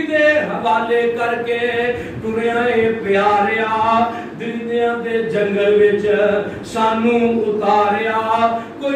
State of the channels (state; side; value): identical; both; correlation 1.00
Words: حوالے کر کے ٹریائے پیاریا درندیاں دے جنگل وچ سانو اتاریا